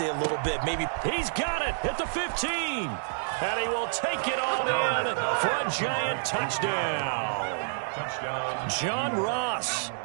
a little bit. Maybe. He's got it at the 15. And he will take it all in for a Giant touchdown. John Ross,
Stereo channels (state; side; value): silent; left; digital silence